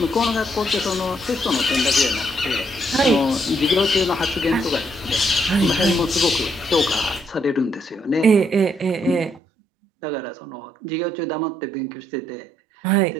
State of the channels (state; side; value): drops out; left; at 9.4 s